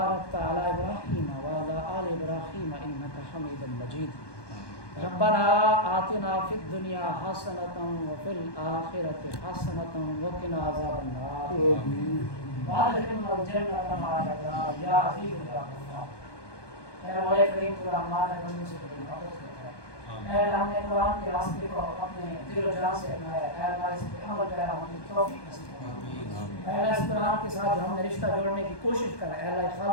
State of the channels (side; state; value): right; late; 1.2 ms